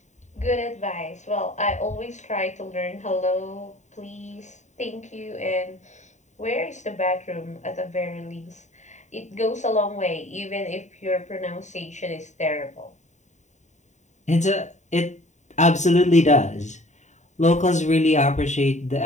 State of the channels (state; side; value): late; right; 0.34 ms